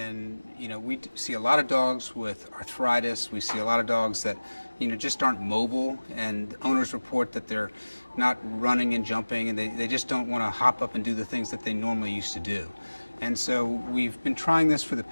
we see a lot of dogs with arthritis. We see a lot of dogs that, just aren't mobile, and owners report that they're not running and jumping, and they just don't want to hop up and do the things that they normally used to do. And so we've been trying this for the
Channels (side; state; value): both; inverted; correlation -1.00